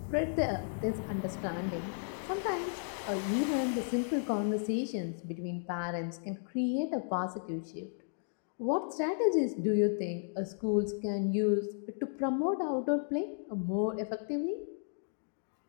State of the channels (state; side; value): silent; right; digital silence